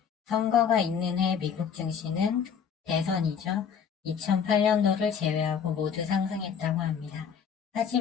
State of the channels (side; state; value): right; quieter; 7.2 dB